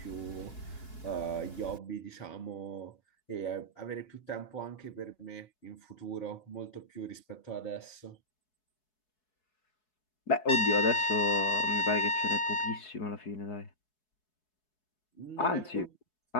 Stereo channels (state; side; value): late; right; 4.7 ms